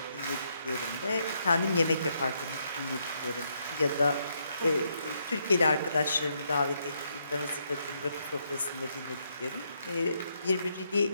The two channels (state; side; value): inverted; both; correlation -0.77